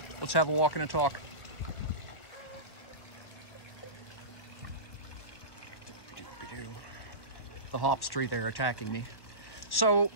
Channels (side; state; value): right; late; 1.1 ms